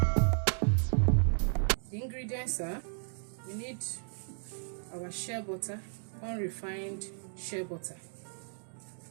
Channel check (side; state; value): left; silent; 55 dB below the other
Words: The ingredients are: we need our shea butter, unrefined shea butter,